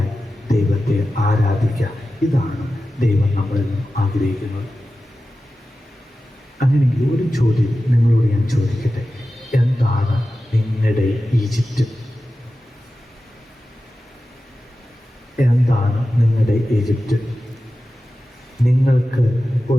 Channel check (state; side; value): normal; both; correlation 0.93